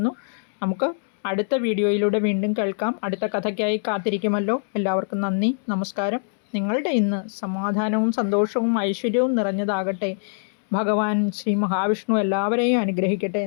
നമുക്ക് അടുത്ത വീഡിയോയിലൂടെ വീണ്ടും കേൾക്കാം. അടുത്ത കഥയ്ക്കായി കാത്തിരിക്കുമല്ലോ. എല്ലാവർക്കും നന്ദി, നമസ്കാരം. നിങ്ങളുടെ ഇന്ന് സമാധാനവും സന്തോഷവും ഐശ്വര്യവും നിറഞ്ഞതാകട്ടെ. ഭഗവാൻ ശ്രീ മഹാവിഷ്ണു എല്ലാവരെയും അനുഗ്രഹിക്കട്ടെ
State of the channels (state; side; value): silent; right; 63 dB below the other